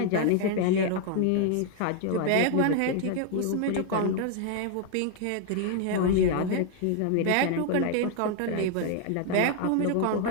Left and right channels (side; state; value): both; different; correlation 0.00